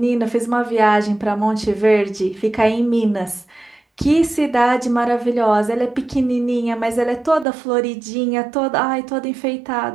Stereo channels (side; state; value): left; drops out; at 7.5 s